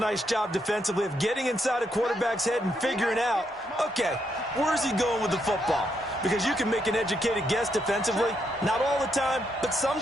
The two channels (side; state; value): both; normal; correlation 0.78